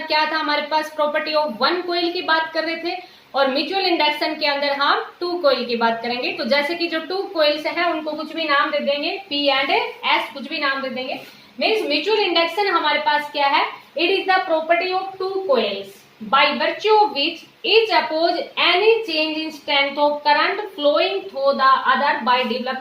क्या था, हमारे पास प्रॉपर्टी ऑफ वन कॉइल की बात कर रहे थे, और म्यूचुअल इंडक्शन के अंदर हम टू कॉइल की बात करेंगे। तो जैसे कि जो टू कॉइल्स हैं उनको कुछ भी नाम दे देंगे, पी एंड एस, कुछ भी नाम दे देंगे। मीन्स म्यूचुअल इंडक्शन हमारे पास क्या है, it is the property of two coils by virtue of which each oppose any change in strength of current flowing through the other by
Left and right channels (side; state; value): both; identical; correlation 1.00